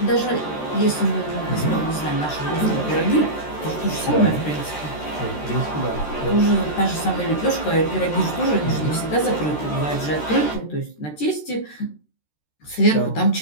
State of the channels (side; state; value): right; late; 13 ms